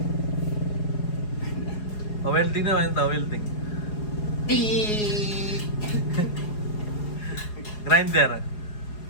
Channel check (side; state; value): right; late; 4.8 ms